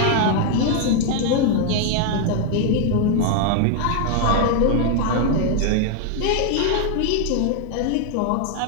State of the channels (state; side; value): different; both; correlation 0.00